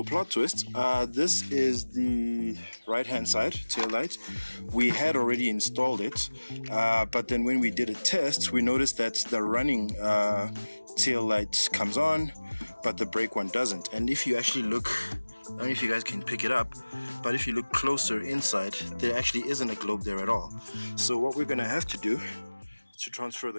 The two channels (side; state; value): both; inverted; correlation -1.00